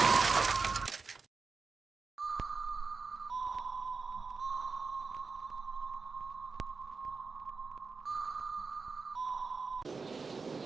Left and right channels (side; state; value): left; quieter; 4.5 dB